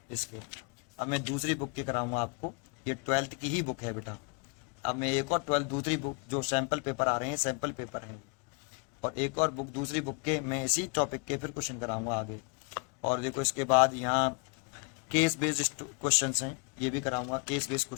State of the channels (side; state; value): right; quieter; 33.7 dB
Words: इसके। अब मैं दूसरी बुक के कराऊंगा आपको, ये 12th की ही बुक है बेटा। अब मैं एक और 12th दूसरी बुक जो सैम्पल पेपर आ रहे हैं, सैम्पल पेपर हैं, और एक और बुक दूसरी बुक के मैं इसी टॉपिक के फिर क्वेश्चन कराऊंगा आगे। और देखो इसके बाद यहाँ केस बेस्ड क्वेश्चन हैं, ये भी कराऊंगा, केस बेस्ड